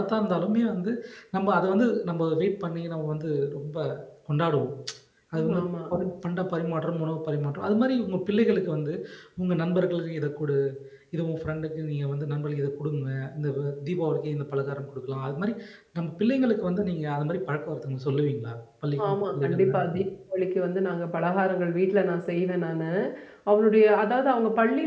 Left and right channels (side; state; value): both; identical; correlation 1.00